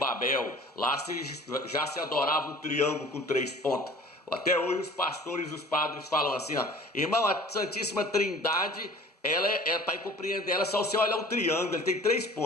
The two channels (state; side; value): normal; both; correlation 0.46